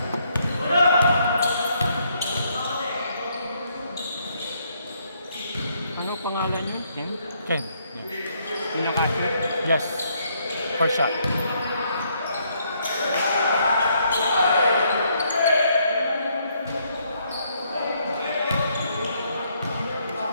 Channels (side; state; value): both; inverted; correlation -0.72